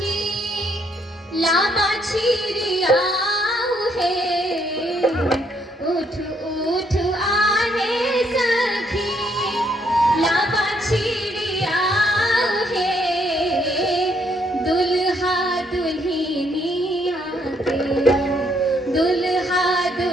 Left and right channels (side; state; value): both; normal; correlation 0.71